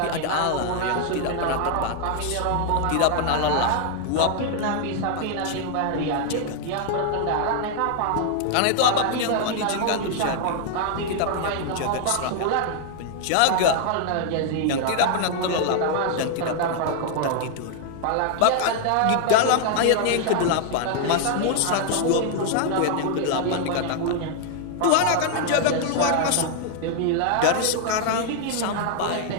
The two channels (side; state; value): both; different; correlation 0.00